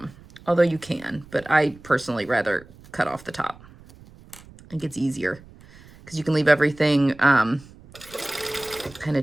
Although you can, but I personally rather cut off the top. I think it's easier because you can leave everything kind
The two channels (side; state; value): right; noise; rumble, 22 dB below the sound